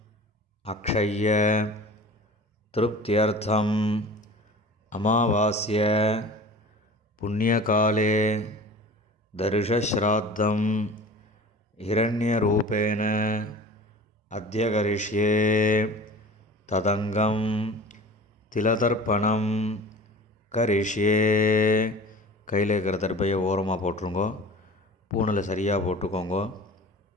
அக்ஷய்ய திருப்தியர்த்தம் அமாவாஸ்ய புண்ணியகாலே தர்ஷஸ்ராத்தம் ஹிரண்யரூபேண அத்ய கரிஷ்யே ததங்கம் திலதர்ப்பணம் கரிஷ்யே. கையில் இருக்கிற தர்பையை ஓரமாக போட்டுருங்கோ. பூனில் சரியாக போட்டுக்கோங்க.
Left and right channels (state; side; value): normal; both; correlation 0.39